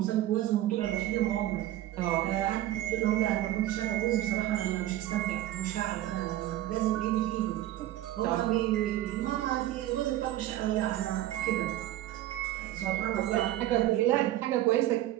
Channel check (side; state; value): left; quieter; 14.0 dB